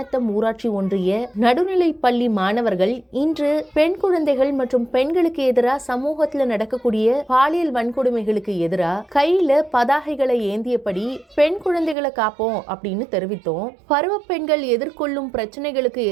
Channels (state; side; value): drops out; left; at 12.0 s